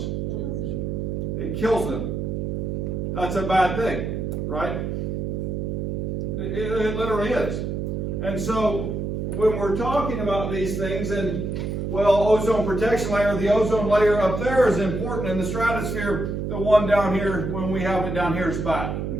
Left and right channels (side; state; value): right; noise; hum, 2 dB below the sound